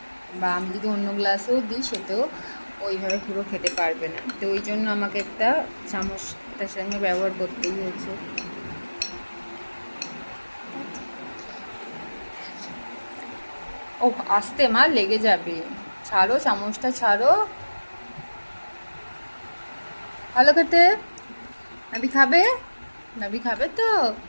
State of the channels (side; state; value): both; inverted; correlation -1.00